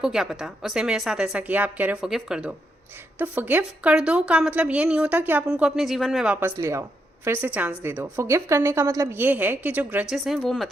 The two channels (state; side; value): normal; both; correlation 0.81